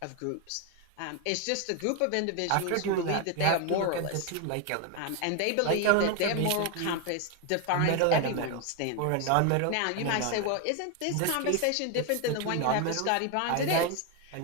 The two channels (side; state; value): both; different; correlation 0.01